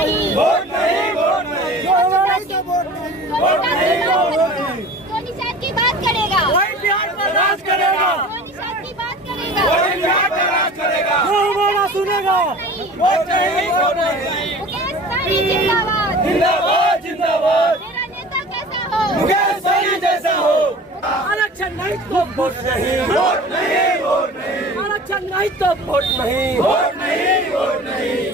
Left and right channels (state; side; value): normal; both; correlation 0.41